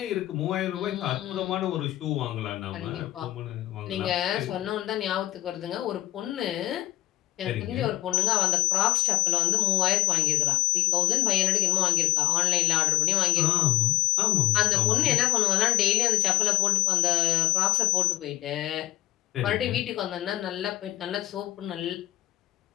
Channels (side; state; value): right; quieter; 14.6 dB